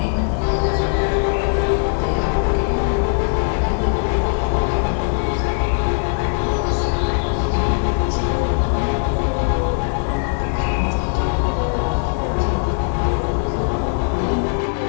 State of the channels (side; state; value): right; silent; digital silence